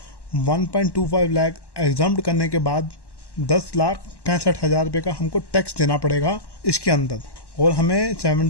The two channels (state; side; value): late; right; 1.1 ms